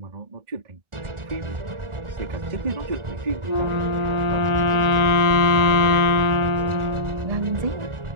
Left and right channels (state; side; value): late; left; 1.4 ms